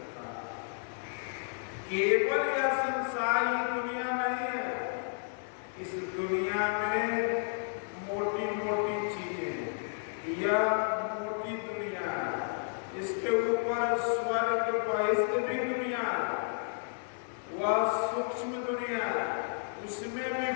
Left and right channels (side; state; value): right; silent; digital silence